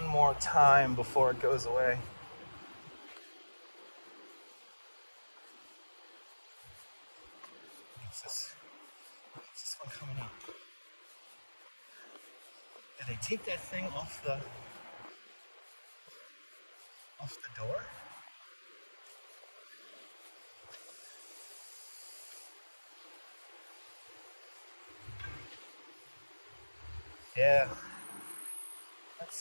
more time before it goes away. Did they take that thing off the door? Yeah. Let's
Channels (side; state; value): both; inverted; correlation -1.00